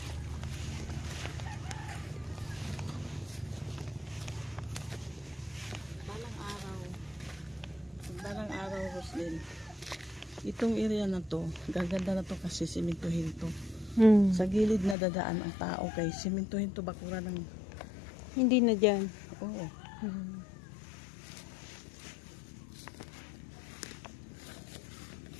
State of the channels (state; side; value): drops out; right; at 15.0 s